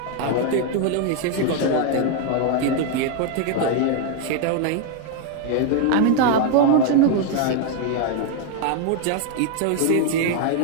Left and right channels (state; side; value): different; both; correlation 0.01